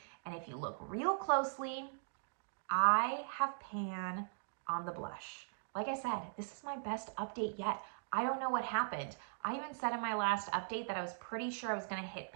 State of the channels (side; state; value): left; silent; digital silence